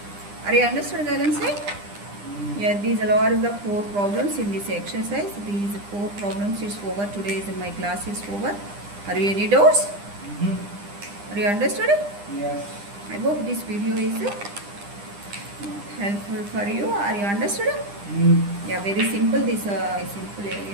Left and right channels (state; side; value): late; left; 9.9 ms